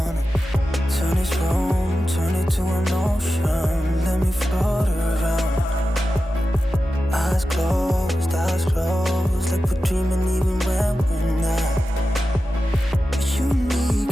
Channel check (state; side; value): normal; both; correlation 0.92